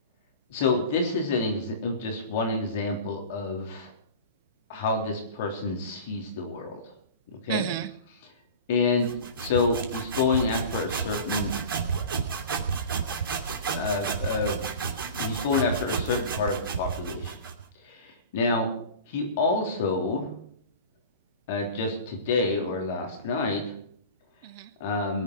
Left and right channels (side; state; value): both; inverted; correlation -0.35